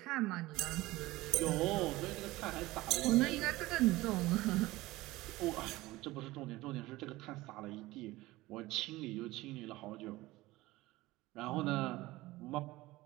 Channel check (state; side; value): quieter; left; 18.9 dB